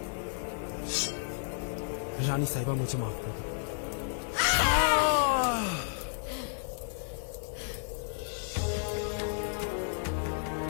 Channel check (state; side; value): silent; right; digital silence